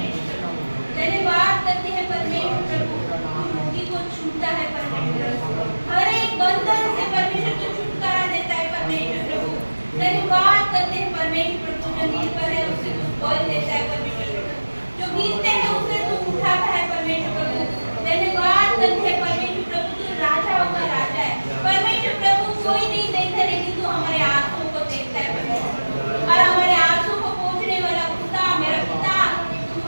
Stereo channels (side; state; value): both; inverted; correlation -1.00